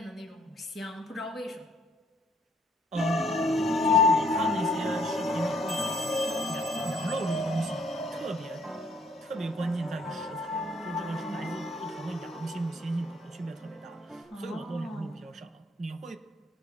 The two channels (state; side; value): normal; both; correlation 0.64